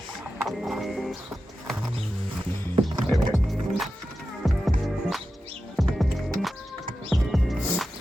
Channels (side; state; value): both; normal; correlation 0.92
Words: There we go.